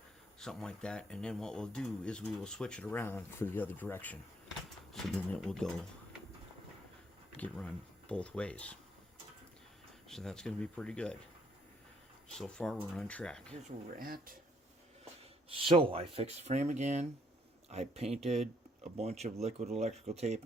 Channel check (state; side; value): normal; both; correlation 0.68